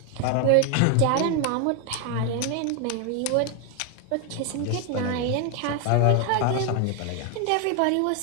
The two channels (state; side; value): different; both; correlation 0.01